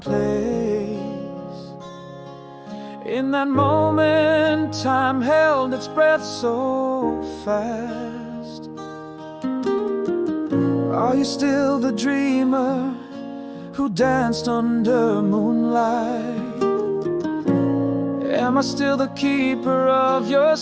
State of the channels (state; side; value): identical; both; correlation 1.00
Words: place. In that moment, time held its breath so fast. Are you still the dreamer who danced under moonlight? Am I still the keeper of your